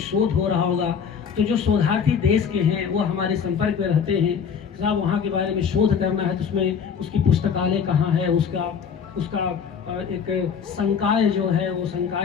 शोध हो रहा होगा। तो जो शोधार्थी देश के हैं वो हमारे संपर्क में रहते हैं, साहब वहाँ के बारे में शोध करना है तो उसमें उसकी पुस्तकालय कहाँ है, उसका एक संकाय जो है, वो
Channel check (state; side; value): quieter; right; 6.9 dB